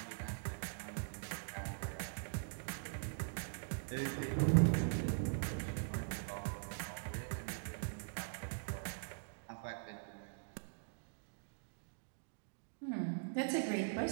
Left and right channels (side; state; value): left; silent; digital silence